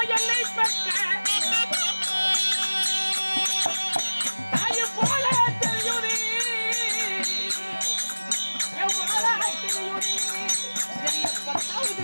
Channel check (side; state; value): both; inverted; correlation -1.00